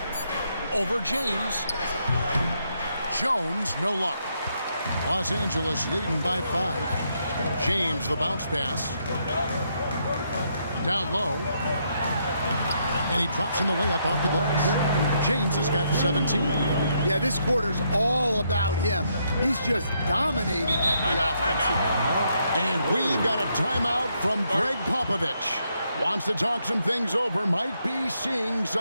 Over James. Jones, no luck. Los Angeles leading by 5. James, the bounce pass. Down low. And he drops in the layup off the glass. James has got 17. Yeah, this quarter's all about him. He's just dominating at the offensive end. And we've got a timeout from Greg Popovich. Wants to talk some things over. Might be seeing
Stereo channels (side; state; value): both; inverted; correlation -0.76